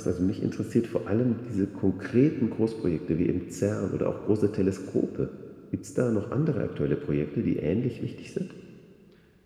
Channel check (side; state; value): both; identical; correlation 1.00